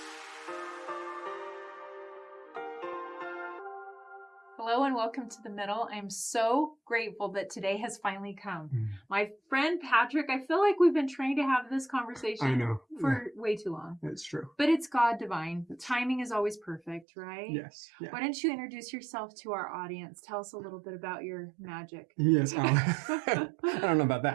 Hello and welcome to The Middle. I'm so grateful that today has finally come. My friend Patrick, I feel like we've been trying to have this conversation for way too long. It's true. But it's God divine. Timing is always perfect, right? Yes. Yeah. Why don't you introduce yourself to our audience? Tell us a little bit about your magic. Yes. I don't know about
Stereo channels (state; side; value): drops out; left; at 17.1 s